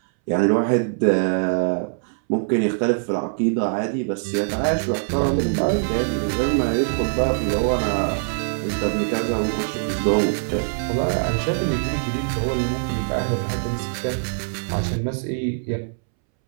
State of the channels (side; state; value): left; silent; 64 dB below the other